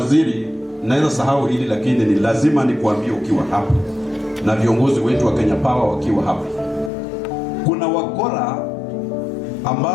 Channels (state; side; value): drops out; right; at 6.9 s